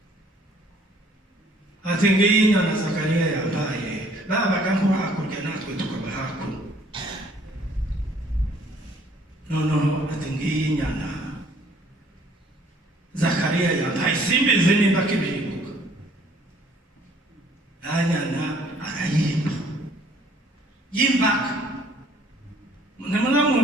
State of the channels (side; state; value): both; normal; correlation 0.59